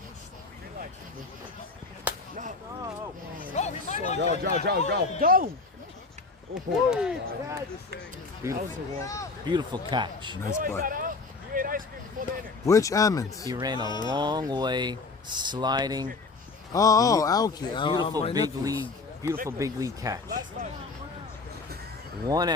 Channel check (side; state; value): right; quieter; 4.0 dB